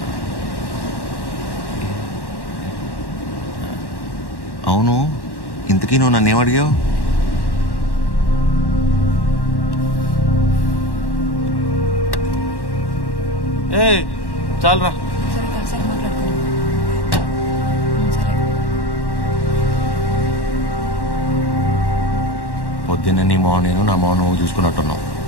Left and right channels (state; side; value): late; right; 1.1 ms